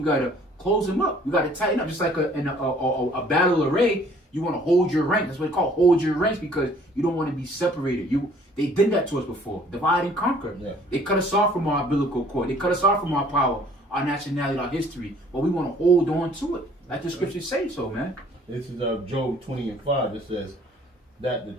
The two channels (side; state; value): both; normal; correlation 0.57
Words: gotta close them up. We gotta tighten up, just like in a battle array. You want to hold your rank. That's what they call hold your ranks, because you don't want to be separated. They did that to us before. Divide and conquer. Yeah. They cut us off from our umbilical cord. They cut us off from our power, our nationality, our history. But we want to hold on to it. Like the scriptures say so, man. This is Job 20:5. It says that the